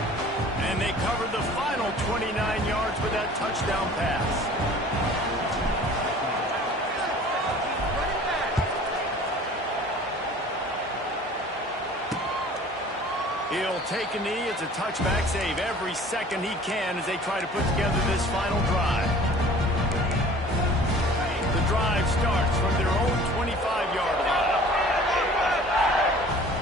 And they cover the final 29 yards with that touchdown pass. He'll take a knee. It's a touchback save every second he can as they try to put together this final drive. The drive starts from their own 25-yard line.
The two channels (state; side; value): normal; both; correlation 0.47